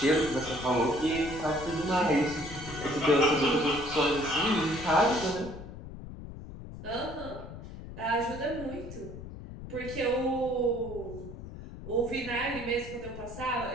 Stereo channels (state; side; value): noise; left; rumble, 12 dB below the sound